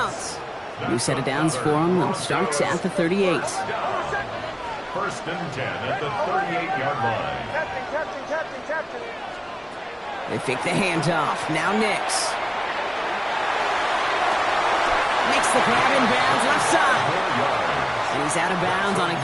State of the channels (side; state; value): both; identical; correlation 1.00